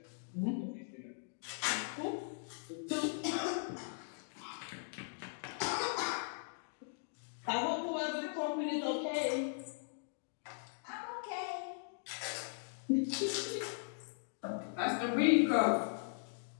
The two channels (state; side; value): silent; right; digital silence